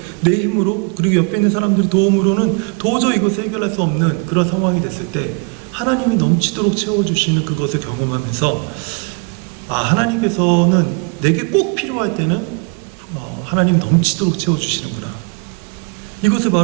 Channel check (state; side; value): quieter; left; 34.4 dB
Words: 내 힘으로 그리고 옆에 있는 사람들의 도움으로는 도저히 이것을 해결할 수 없는 그런 상황이 됐을 때 하나님이 넘치도록 채워주시는 그것을 경험하면서 하나님께서는 내게 꼭 필요할 때는 하나님 넘치도록 채워주시는구나. 이것을